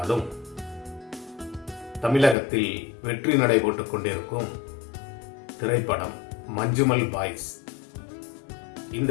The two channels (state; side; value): drops out; right; at 2.4 s